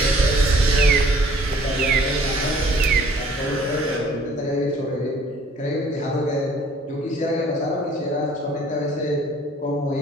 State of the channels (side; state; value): both; normal; correlation 0.56